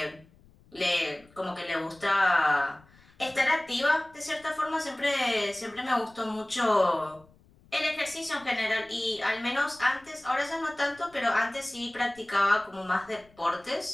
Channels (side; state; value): left; noise; rumble, 28 dB below the sound